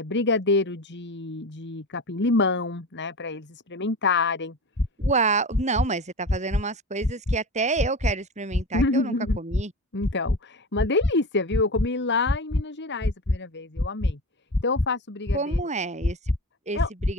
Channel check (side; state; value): both; normal; correlation 0.28